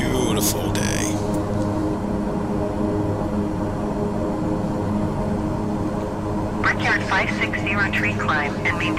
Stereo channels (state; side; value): identical; both; correlation 1.00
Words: day. Brickyard 560 tree climb and